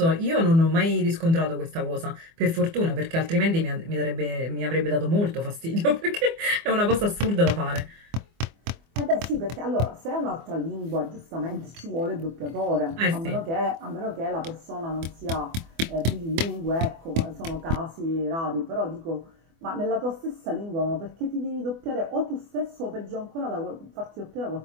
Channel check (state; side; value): late; left; 24 ms